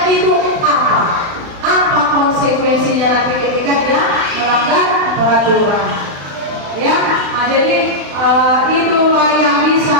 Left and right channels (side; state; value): left; late; 35 ms